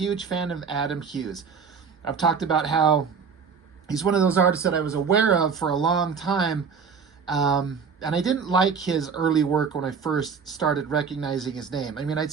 fan of Adam Hughes. I've talked about how he's one of those artists that I was aware of for a long time. And I didn't like his early work when I first started recognizing his name. I mean, I'd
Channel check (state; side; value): quieter; left; 5.9 dB